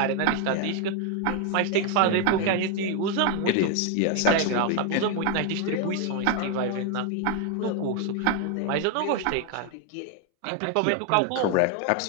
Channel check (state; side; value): different; both; correlation 0.01